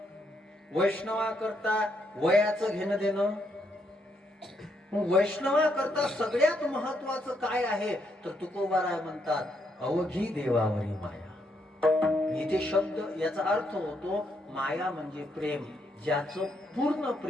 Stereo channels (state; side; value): normal; both; correlation 0.76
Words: वैष्णवा करता वयाचं घेणं देणं. वैष्णवा करता सगळ्यात महत्वाचं काय आहे तर तुकोबाराय म्हणतात अवघी देवावरी माया. इथे शब्द याचा अर्थ होतो माया म्हणजे प्रेम. ज्याचं पूर्ण